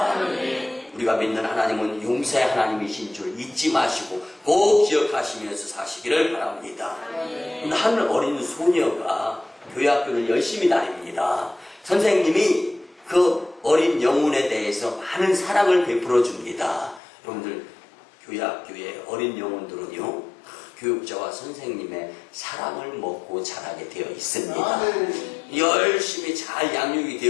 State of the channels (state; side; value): drops out; right; at 17.0 s